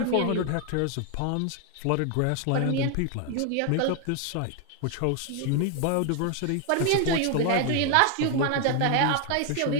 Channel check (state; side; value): different; both; correlation 0.00